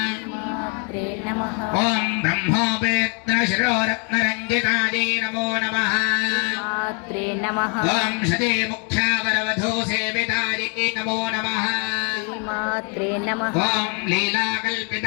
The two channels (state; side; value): quieter; right; 36.1 dB